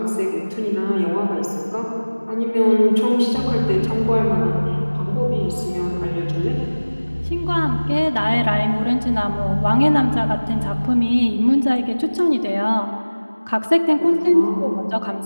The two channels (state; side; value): inverted; both; correlation -1.00